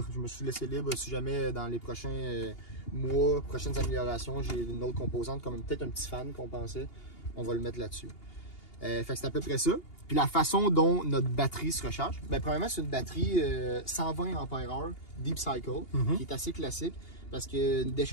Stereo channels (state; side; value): late; right; 2.8 ms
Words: Je me suis laissé libre si jamais dans les prochains mois, prochaines améliorations, j'ai une autre composante, comme peut-être un petit fan qu'on pensait. On va le mettre là-dessus. Fait que c'est à peu près ça. Puis la façon dont notre batterie se recharge, ben, premièrement, c'est une batterie 120 Ah Deep Cycle, qui est assez classique. Parce que une